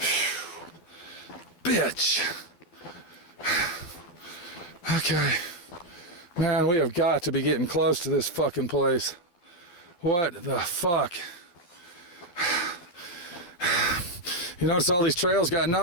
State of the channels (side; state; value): right; late; 12 ms